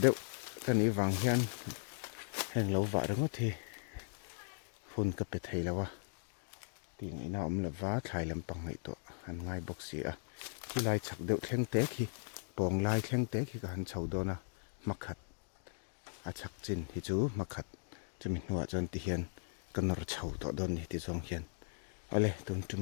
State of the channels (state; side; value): silent; right; digital silence